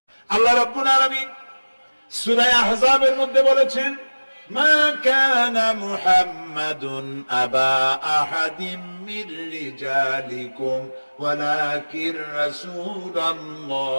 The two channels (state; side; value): inverted; both; correlation -1.00